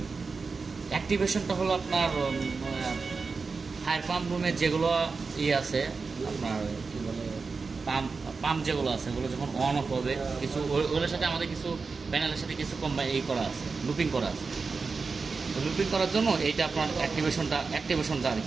অ্যাক্টিভেশনটা হলো আপনার ফায়ার পাম্প রুমের যেগুলো আছে আপনার কী বলে পাম্প যেগুলো আছে ওগুলো যখন অন অফ হবে, কিছু ওগুলোর সাথে আমাদের কিছু প্যানেলের সাথে কিছু করা আছে, লুপিং করা আছে। তো লুপিং করার জন্য এইটা আপনার অ্যাক্টিভেশনটা আর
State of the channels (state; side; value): quieter; left; 4.5 dB